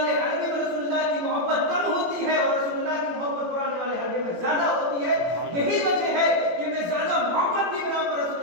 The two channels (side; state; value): left; late; 17 ms